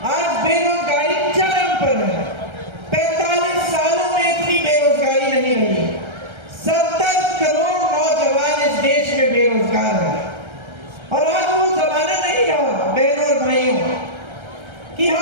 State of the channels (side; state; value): left; late; 1.3 ms